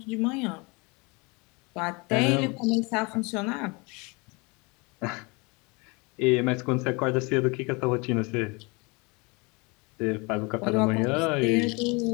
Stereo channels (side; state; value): right; quieter; 28.4 dB